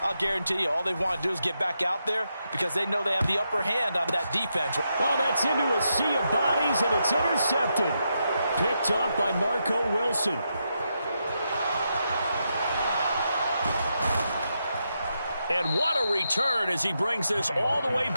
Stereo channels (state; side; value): inverted; both; correlation -0.83